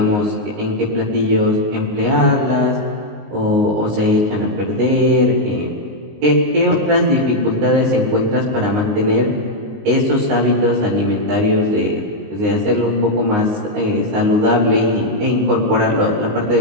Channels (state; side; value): late; left; 19 ms